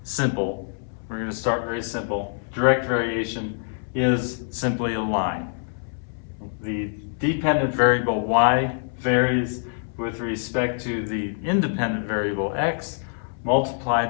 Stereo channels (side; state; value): right; silent; 62 dB below the other